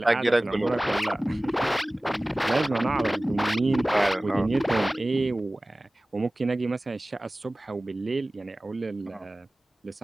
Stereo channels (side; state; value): both; normal; correlation 0.98